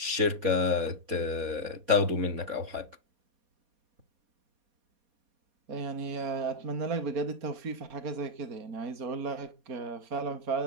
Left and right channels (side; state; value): left; late; 4.2 ms